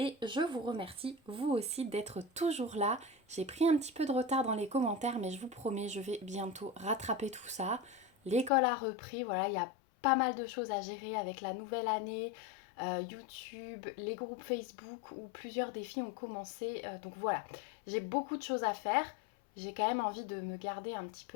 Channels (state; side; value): drops out; right; at 8.5 s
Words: je vous remercie, vous aussi, d'être toujours là. J'ai pris un petit peu de retard dans les commentaires, mais je vous promets, je vais bientôt rattraper tout ça. L'école a repris, voilà, il y a pas mal de choses à gérer avec la nouvelle année, YouTube, les groupes Facebook où plusieurs défis ont commencé. Donc voilà, j'ai beaucoup de choses à faire. J'ai quand même envie de me garder un petit